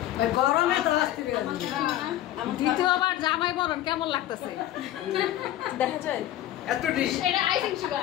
গরমে তো দ্বিতীয়বার জামাই বরণ কেমন লাগতেছে দেখা যায় এত ডিশ এটা আইসিং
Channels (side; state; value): right; quieter; 13.4 dB